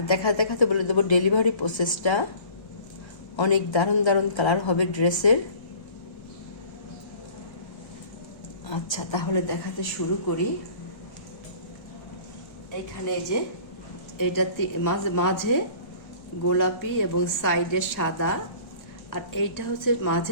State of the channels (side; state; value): right; late; 1.3 ms